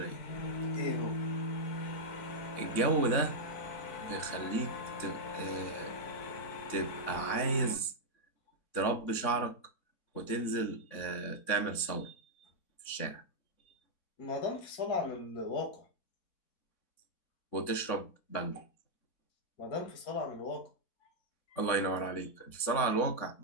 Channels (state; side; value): late; right; 3.6 ms